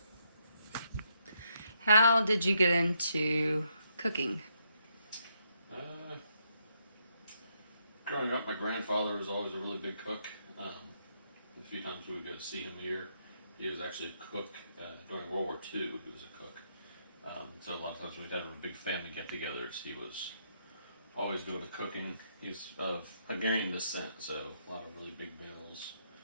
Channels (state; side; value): inverted; both; correlation -0.76